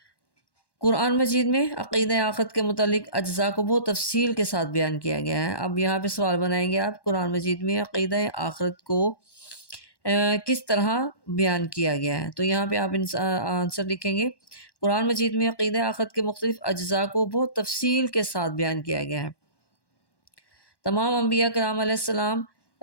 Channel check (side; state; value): right; late; 1.1 ms